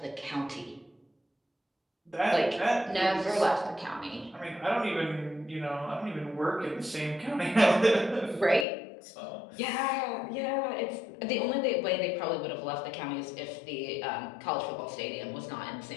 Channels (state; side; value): drops out; right; at 8.7 s